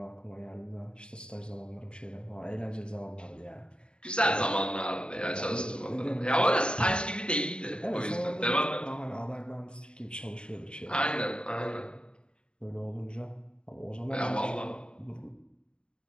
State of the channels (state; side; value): late; right; 0.052 ms